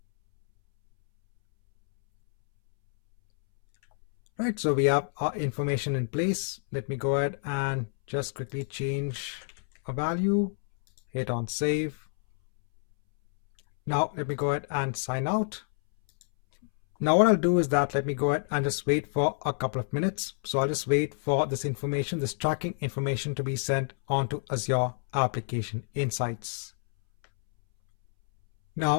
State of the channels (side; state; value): right; silent; 59 dB below the other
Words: Right, so we have our information in place. Let me go ahead and just quickly change a value, hit on save. Now let me go ahead and sign out. Now what I'll do is that let me go ahead and just wait for a couple of minutes. So I'll just wait for this information, this tracking information to be sent onto Azure Application Insights.